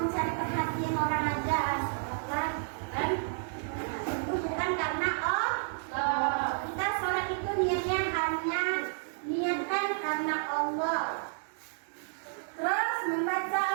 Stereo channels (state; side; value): silent; left; digital silence